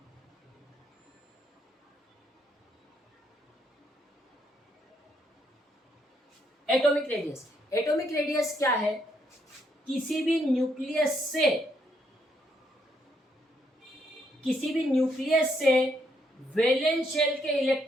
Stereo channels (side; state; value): both; normal; correlation 0.74